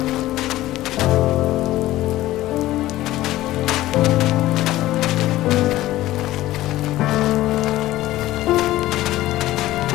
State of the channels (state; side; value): quieter; right; 15.9 dB